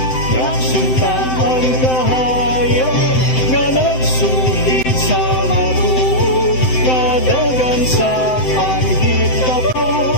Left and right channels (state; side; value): late; right; 7.8 ms